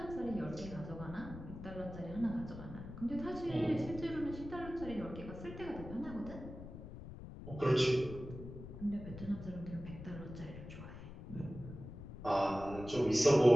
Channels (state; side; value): noise; left; rumble, 12 dB below the sound